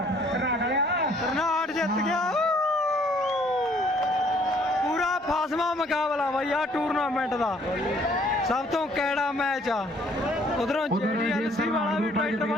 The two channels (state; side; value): normal; both; correlation 0.61